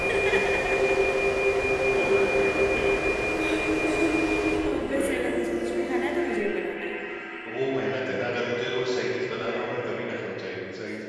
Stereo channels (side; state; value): both; identical; correlation 1.00